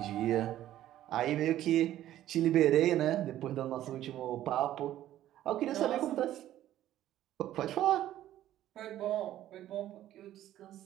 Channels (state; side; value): quieter; left; 13.0 dB